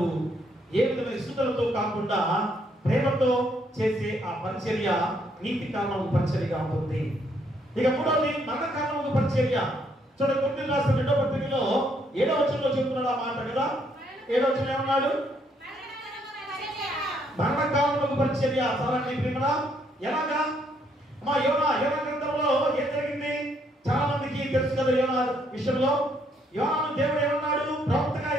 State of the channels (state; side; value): normal; both; correlation 0.71